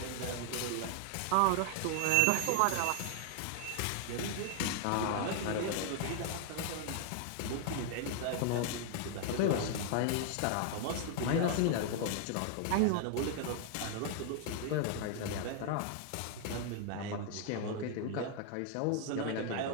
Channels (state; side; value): different; both; correlation 0.00